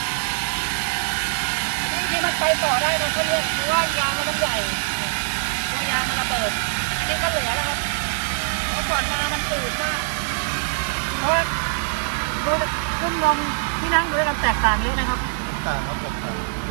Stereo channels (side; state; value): left; silent; 58 dB below the other